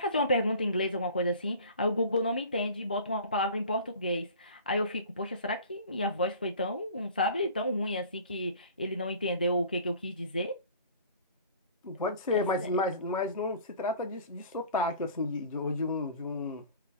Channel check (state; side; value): inverted; both; correlation -0.45